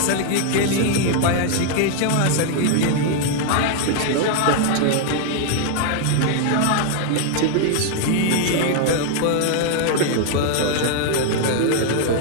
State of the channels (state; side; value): different; both; correlation 0.00